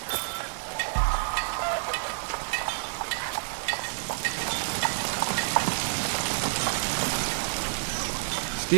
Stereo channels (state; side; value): silent; left; 59 dB below the other